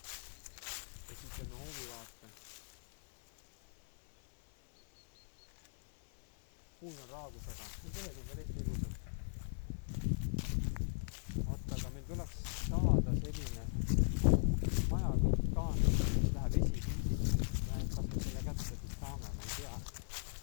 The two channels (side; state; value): right; silent; 52 dB below the other